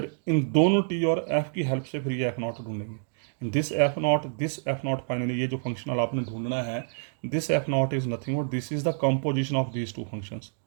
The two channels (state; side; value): silent; left; digital silence